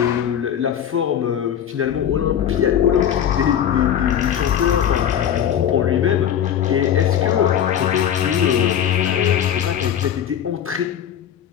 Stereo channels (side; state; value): right; quieter; 9.6 dB